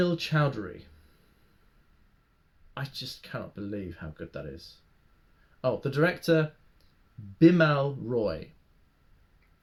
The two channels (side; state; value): both; identical; correlation 1.00